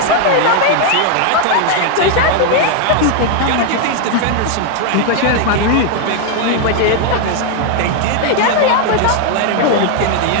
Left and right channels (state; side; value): different; both; correlation 0.00